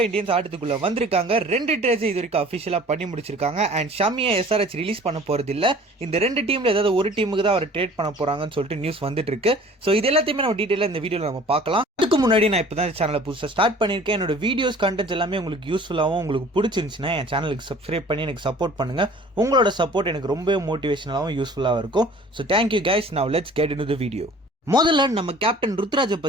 இந்தியன்ஸ் ஆட்டத்துக்குள்ள வந்திருக்காங்க. 2 ட்ரேட்ஸ் இது வரைக்கும் அஃபிஷியலாக பண்ணி முடிச்சிருக்காங்க. அண்ட் ஷமியை எஸ்ஆர்ஹெச் ரிலீஸ் பண்ண போறது இல்லை. இந்த 2 டீம்ல ஏதாவது ஒரு டீமுக்கு தான் அவர் ட்ரேட் பண்ண போறாங்கன்னு சொல்லிட்டு நியூஸ் வந்துட்டு இருக்கு. ஸோ இது எல்லாத்தையுமே நம்ம டீட்டெயிலாக இந்த வீடியோவில் நம்ம பார்க்கலாம். அதுக்கு முன்னாடி நான் இப்போ தான் சேனலை புதுசாக ஸ்டார்ட் பண்ணியிருக்கேன். என்னோட வீடியோஸ் கண்டென்ட்ஸ் எல்லாமே உங்களுக்கு யூஸ்ஃபுல்லாகவும் உங்களுக்கு பிடிச்சிருந்துச்சுன்னா என் சேனலுக்கு சப்ஸ்கிரைப் பண்ணி எனக்கு சப்போர்ட் பண்ணுங்க. உங்களோட சப்போர்ட் எனக்கு ரொம்பவே மோட்டிவேஷனலாகவும் யூஸ்ஃபுல்லாக இருக்கும். So thank you guys. Now let's get into the video. முதல்ல நம்ம கேப்டன் ருத்ராஜை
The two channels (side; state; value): both; normal; correlation 0.48